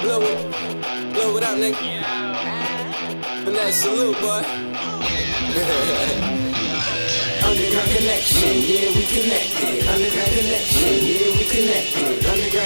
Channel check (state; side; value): inverted; both; correlation -1.00